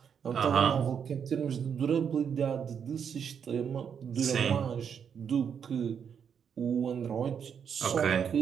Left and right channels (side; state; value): left; quieter; 7.5 dB